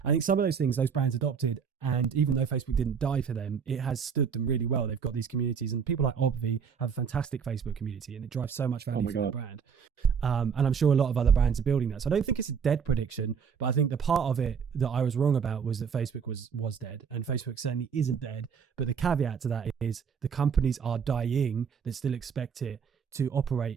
I think some of those things, those brands adopted. And even though Facebook didn't die for them, it has stood them really well. They've got these communities, and people like Obvi have a fantastic Facebook community, and it drives so much value for their brand. And I'm sure a lot of other brands are building that. So I don't think it's a dead prediction, but I think the part of it that I was wrong about was that Facebook was dead, and Facebook certainly isn't dead. But the caveat to that is the companies are dying that still expect it to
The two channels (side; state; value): left; quieter; 6.7 dB